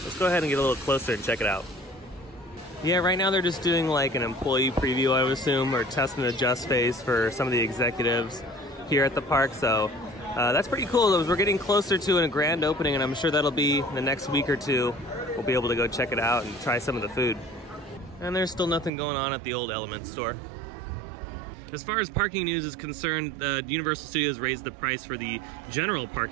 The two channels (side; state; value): left; drops out; at 18.9 s